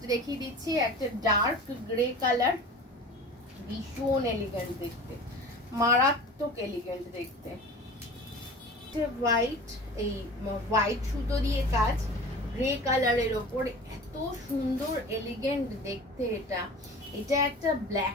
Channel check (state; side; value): normal; both; correlation 0.38